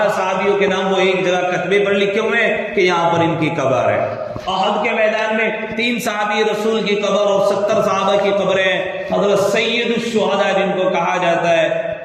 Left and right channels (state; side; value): identical; both; correlation 1.00